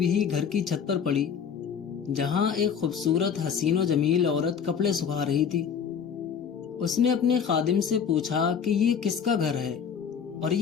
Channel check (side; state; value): right; quieter; 7.2 dB